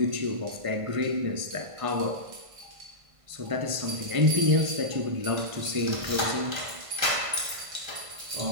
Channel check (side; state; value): left; late; 1.5 ms